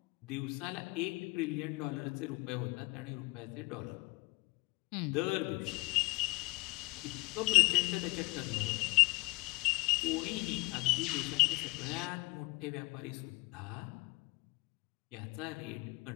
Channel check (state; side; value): quieter; right; 24.3 dB